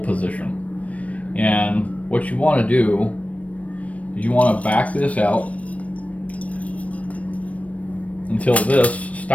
And what you want to do is you want to back this out until this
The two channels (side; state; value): right; late; 0.066 ms